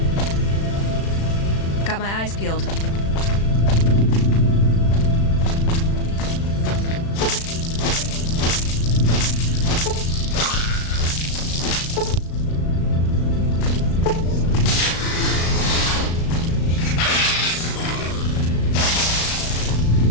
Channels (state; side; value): late; right; 36 ms